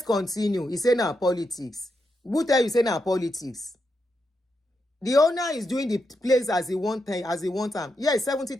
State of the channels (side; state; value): both; normal; correlation 0.84